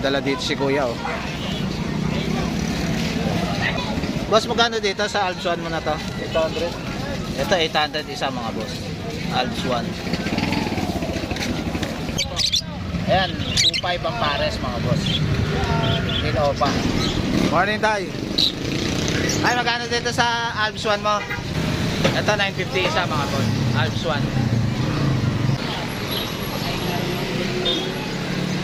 dala dito si Kuya oh. Boss, magkano dito sa Alps 1 mo na to? 800. Ito 800 isa mga boss. Alps 1. Ayan, 2.5 ang pares mga boss. Hindi na opa. Morning tayo. Ay, magkano dito sa Alps 1 mo? Ito 950 isa mga boss. Alps 1.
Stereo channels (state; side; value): identical; both; correlation 1.00